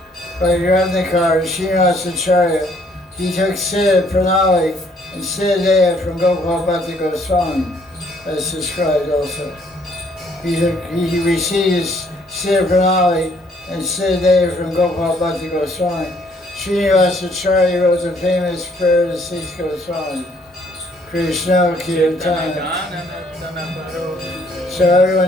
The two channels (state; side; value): normal; both; correlation 0.65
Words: Bhakti Ratnakar, Srinivasacharya, he took Siddha Pranali and Siddha Deya from Gopal Bhakti Goswami, as described also. He received Siddha Pranali and Siddha Deya from Gopal Bhakti Goswami. Srinivasacharya wrote the famous prayer to Six Goswami, Krishna Kirtana. So